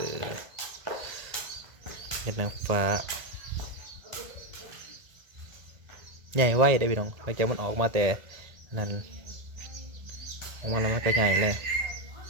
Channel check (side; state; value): left; late; 1.8 ms